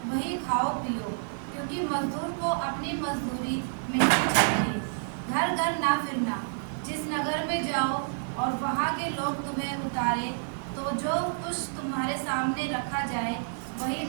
वही खाओ पियो, क्योंकि मजदूर को अपनी मजदूरी मिलनी चाहिए। घर घर ना फिरना। जिस नगर में जाओ और वहाँ के लोग तुम्हें उतारे तो जो कुछ तुम्हारे सामने रखा जाए वही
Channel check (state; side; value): silent; left; digital silence